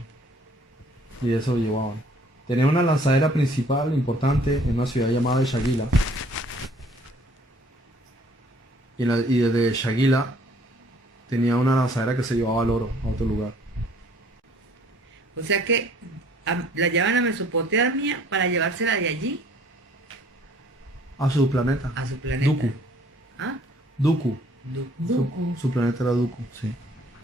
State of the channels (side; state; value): both; normal; correlation 0.58